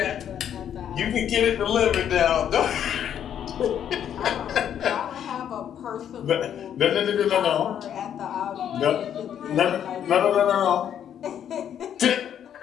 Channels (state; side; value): quieter; right; 9.5 dB